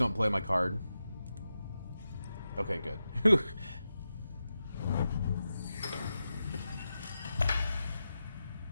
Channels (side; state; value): both; inverted; correlation -0.90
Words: play my card. Okay, good.